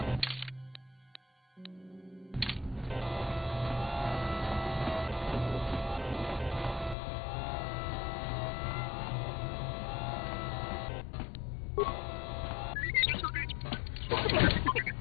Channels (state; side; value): drops out; right; at 7.0 s